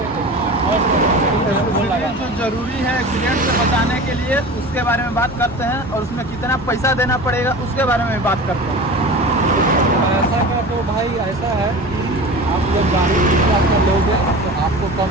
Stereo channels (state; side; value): normal; both; correlation 0.34